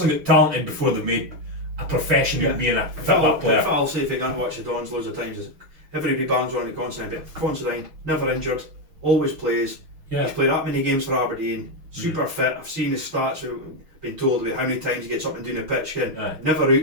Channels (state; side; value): late; left; 6.3 ms